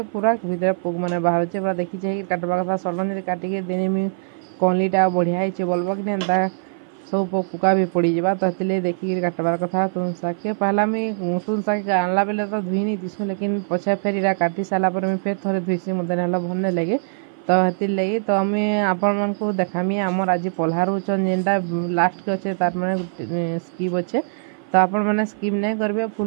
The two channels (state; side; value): silent; left; 57 dB below the other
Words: पूरा भीतर पोक मैंने बाहर पूरा देखी चाहिए काटवा कथा सडन जब काटिके देनेमी कणलीटा बढ़िया होचे बोलबो कि एंता सब पुका भी पड़ जावा। तो ये देखिए काटबार कथा तुन शाग के पहला मुझे तुन शाग आनला बेले तो धुई नहीं तीसु लेकिन पछे फिर इरा काटी सारा पर फिर थे धुईसी मत ना भल नहीं लगे। तो हेती लगी तो आम आपण मन को देखामी आमर आज पल्हा रुचन जेनटा लास्ट के अच्छे तार मैंने स्कीप अच्छे तो आपण मैंने स्कीप नहीं करेंगे